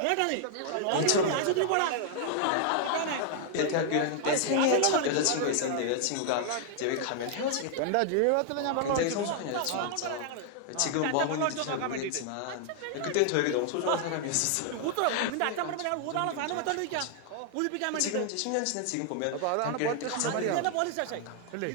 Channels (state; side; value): different; both; correlation -0.01